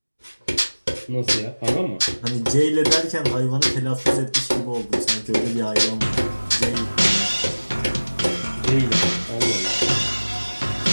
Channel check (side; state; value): both; inverted; correlation -1.00